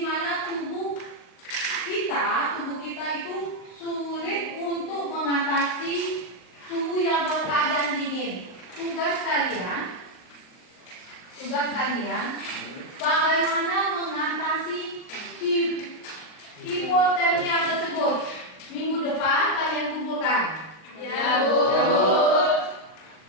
mana tubuh kita itu sulit untuk mengatasi suhu yang berkeadaan dingin. Tugas kalian bagaimana mengatasi hipotermia tersebut. Minggu depan kalian kumpulkan. Ya, Bu.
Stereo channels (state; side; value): late; right; 38 ms